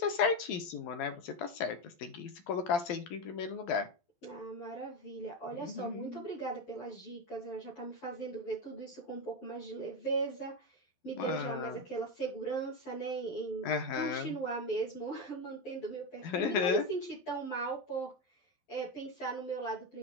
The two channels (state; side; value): late; right; 12 ms